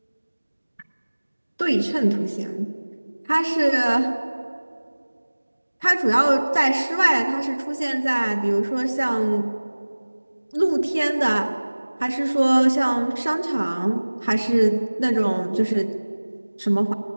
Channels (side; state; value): both; inverted; correlation -1.00